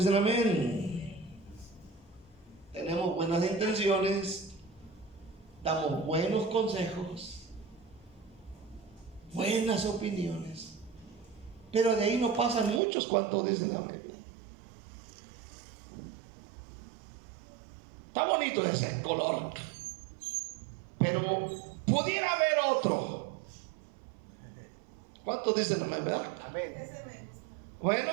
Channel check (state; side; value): drops out; left; at 12.8 s